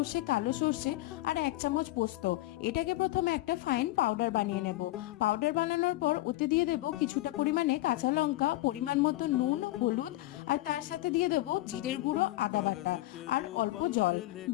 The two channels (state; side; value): quieter; right; 17.6 dB